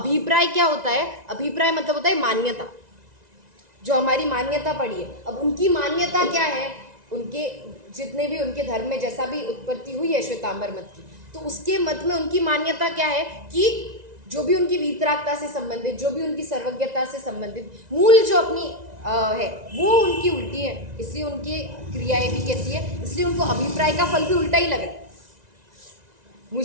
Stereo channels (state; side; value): late; left; 1.9 ms